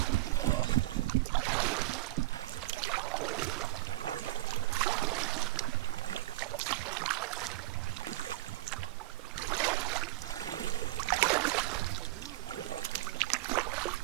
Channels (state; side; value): quieter; left; 18.2 dB